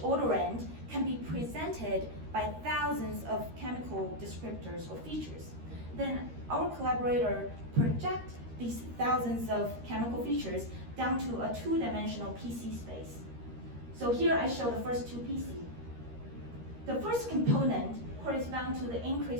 odorant can be presented by thousands of chemical descriptors or features. Then our collaborator project these thousands of chemical features down to a two-dimensional PC space. So here I show the first two PC. The first component corresponds to the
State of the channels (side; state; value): left; late; 13 ms